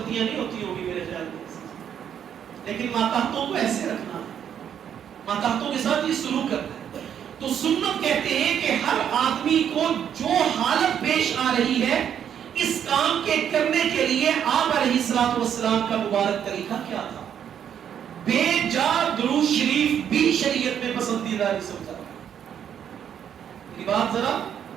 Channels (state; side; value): quieter; left; 8.9 dB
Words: نہیں ہوتی ہوگی میرے خیال میں، لیکن ماتحتوں کو ایسے رکھنا ہے، ماتحتوں کے ساتھ یہ سلوک کرنا ہے۔ تو سنت کہتے ہیں کہ ہر آدمی کو جو حالت پیش آ رہی ہے اس کام کے کرنے کے لیے آپ علیہ السلام کا مبارک طریقہ کیا تھا؟ بے جا درود شریف بھی شریعت میں پسندیدہ نہیں سمجھا۔ یہ بات ذرا